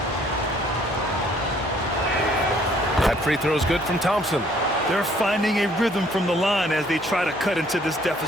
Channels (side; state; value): both; normal; correlation 0.61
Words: That free throw is good from Thompson. They're finding a rhythm from the line as they try to cut into this